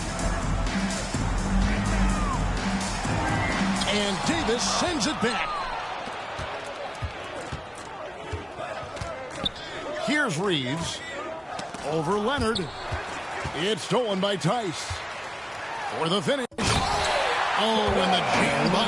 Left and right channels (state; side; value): identical; both; correlation 1.00